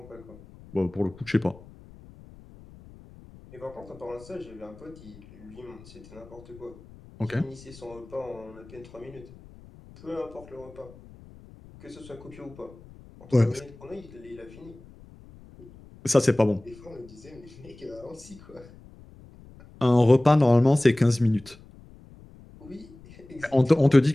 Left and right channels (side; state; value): left; noise; rumble, 21 dB below the sound